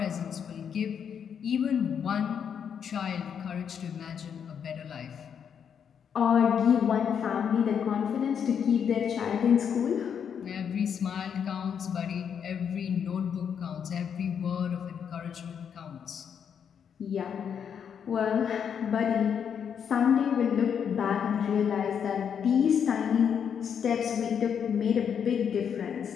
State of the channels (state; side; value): quieter; right; 7.7 dB